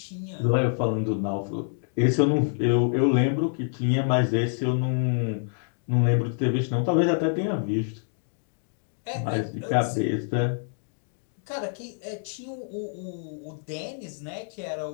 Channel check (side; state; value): right; silent; digital silence